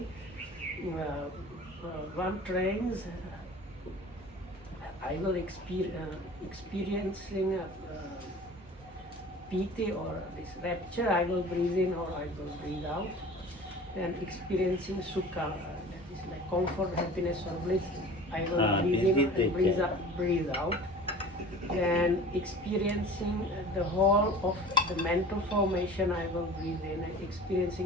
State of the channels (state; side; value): normal; both; correlation 0.41